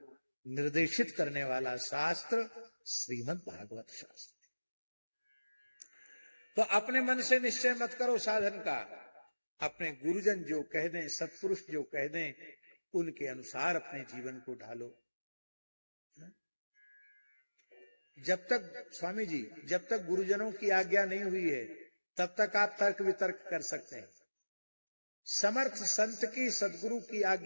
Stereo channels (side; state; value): both; inverted; correlation -1.00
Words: निर्देशित करने वाला शास्त्र श्रीमद् भागवत शास्त्र। तो अपने मन से निश्चय मत करो साधन का, अपने गुरुजन जो कह दें, सत्पुरुष जो कह दें, उनके अनुसार अपने जीवन को ढालो। जब तक स्वामी जी, जब तक गुरुजनों की आज्ञा नहीं हुई है तब तक आप तर्क वितर्क कर सकते हैं। समर्थ संत की, सदगुरु की